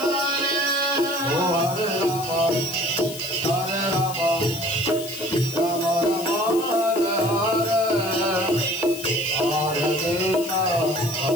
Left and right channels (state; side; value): noise; left; hiss, 12 dB below the sound